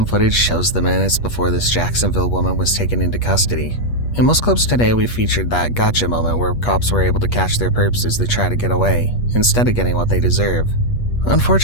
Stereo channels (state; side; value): late; right; 8.3 ms